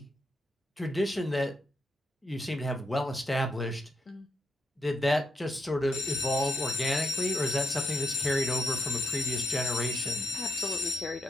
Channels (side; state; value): both; normal; correlation 0.80